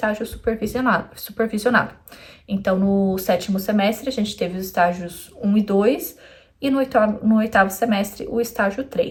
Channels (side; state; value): both; identical; correlation 1.00